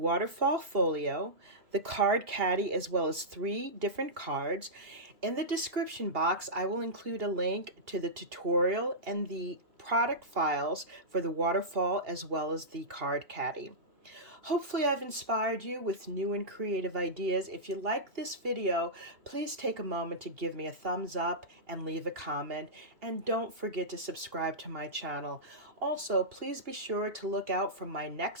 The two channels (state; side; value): late; left; 2.8 ms